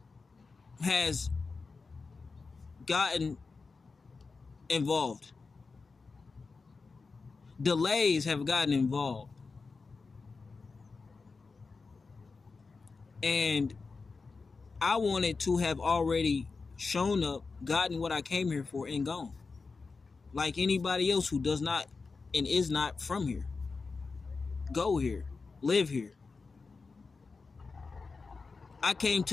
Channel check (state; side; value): quieter; right; 4.4 dB